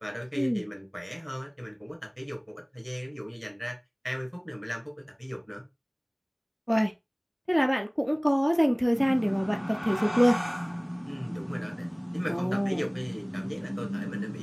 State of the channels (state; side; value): identical; both; correlation 1.00